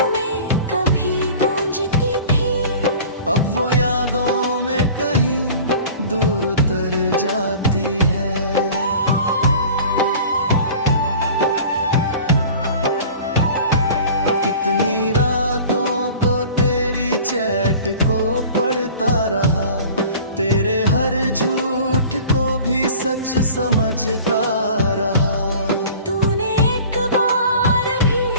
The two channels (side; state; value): both; inverted; correlation -0.43